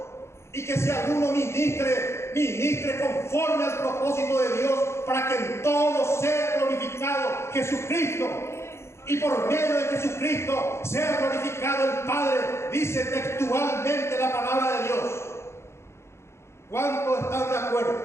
y que si alguno ministre conforme al propósito de Dios, para que en todo sea glorificado Jesucristo, y por medio de Jesucristo sea glorificado el Padre, dice textualmente la palabra de Dios. ¿Cuántos están de acuerdo?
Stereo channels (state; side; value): late; right; 0.13 ms